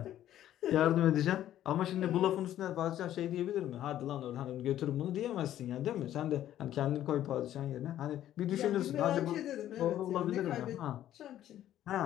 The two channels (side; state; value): right; quieter; 12.2 dB